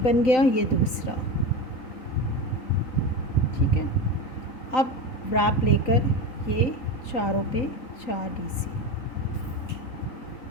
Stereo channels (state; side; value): late; right; 3.9 ms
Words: बन गया, ये दूसरा, ठीक है। अब व्रैप लेकर ये चारों पे 4 डीसी,